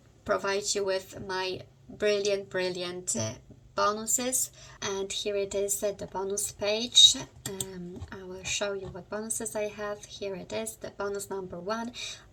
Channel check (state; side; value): identical; both; correlation 1.00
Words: provide you with my brilliant bonuses. And here it is, the bonus page. I will show you what bonuses I have. Here it is, the bonus number 1,